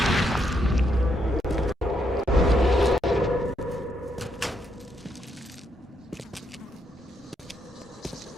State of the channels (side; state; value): both; normal; correlation 0.77